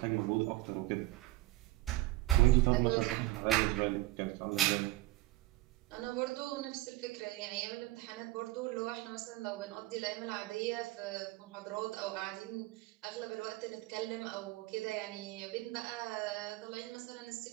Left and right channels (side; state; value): left; quieter; 18.5 dB